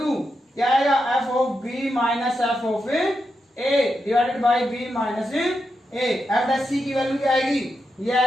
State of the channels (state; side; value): normal; both; correlation 0.86